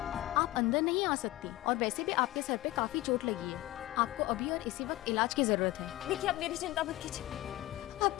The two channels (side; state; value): right; quieter; 17.9 dB